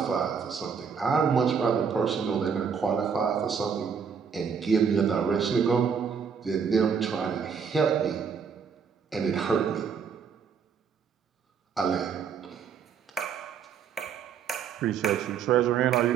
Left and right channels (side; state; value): left; quieter; 6.7 dB